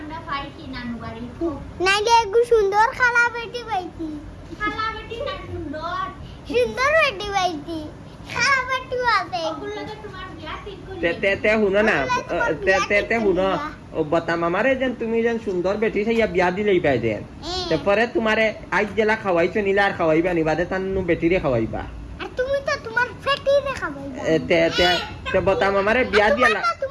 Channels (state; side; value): identical; both; correlation 1.00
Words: পাইছি নানু বাড়ি নাইলে একটু সুন্দর খালা বেটি পাইছি খালা বাটি না সুন্দর সুন্দর বেটি পাইছি খালা বেটি আছে ওগুলোকে তোমার বিয়া ঠিক করে তে শুনো না তে শুনো ও বতা মামারে যেন তুমি যেন সুন্দর বেটি সাইয়া বিয়া দিলেই পাই দেন তারপরে তোমারে আজ জেলা খাওয়াইছো নিলে আর খাওয়াইবা নি বাদে তান্নু বেটিরে খাওয়াইবা আর তুমি তো তোমার ফ্যাটি রে খাবাইবা তে বতা মামারে বিয়া দিয়া